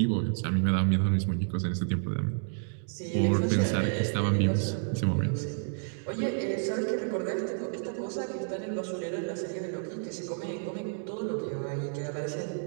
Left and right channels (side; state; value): left; silent; digital silence